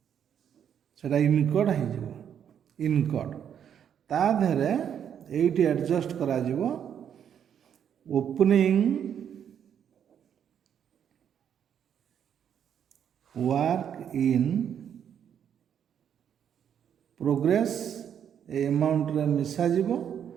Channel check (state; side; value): quieter; left; 8.7 dB